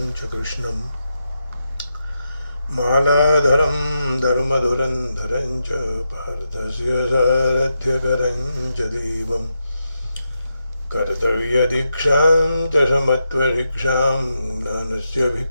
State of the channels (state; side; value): inverted; both; correlation -0.85